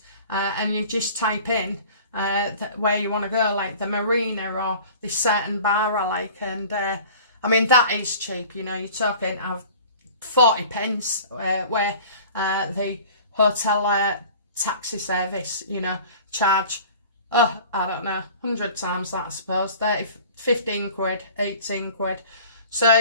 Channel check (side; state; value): both; inverted; correlation -0.44